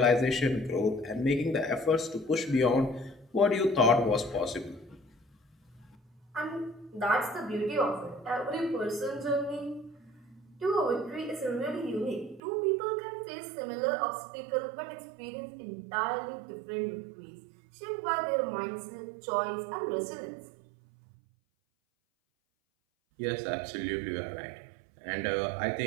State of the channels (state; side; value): drops out; left; at 12.4 s